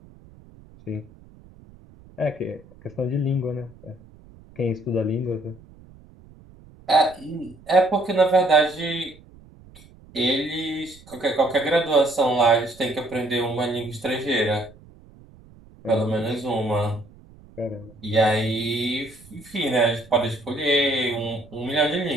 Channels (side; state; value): right; noise; rumble, 23 dB below the sound